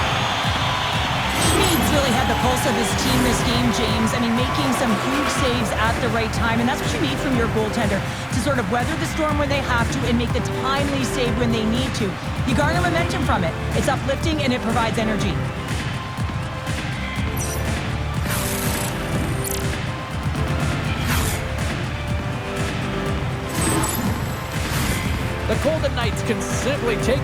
Schmid's really had the pulse of his team this game, James. I mean, making some huge saves at the right time, and that's what you need from your goaltender, to sort of weather the storm when they have to and make the timely save when they need to. You garner momentum from it. It's uplifting and it provides energy. The Golden Knights can simply take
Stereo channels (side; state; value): both; identical; correlation 1.00